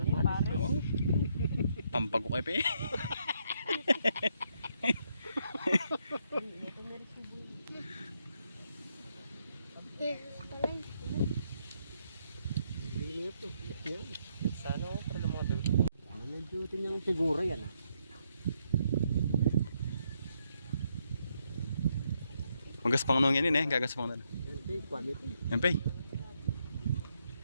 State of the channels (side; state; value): both; inverted; correlation -0.76